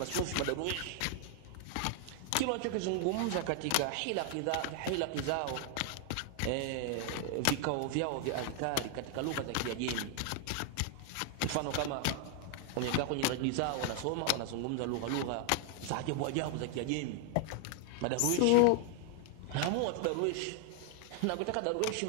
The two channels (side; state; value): both; different; correlation 0.00